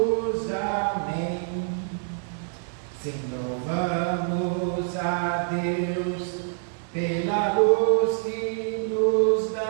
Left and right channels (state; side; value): silent; left; 61 dB below the other